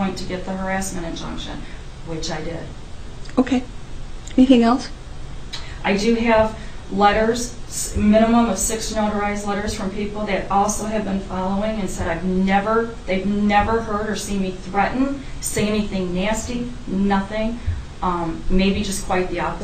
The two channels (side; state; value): both; identical; correlation 1.00